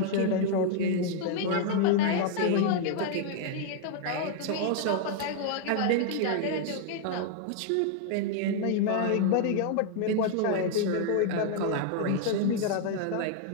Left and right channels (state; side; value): different; both; correlation 0.00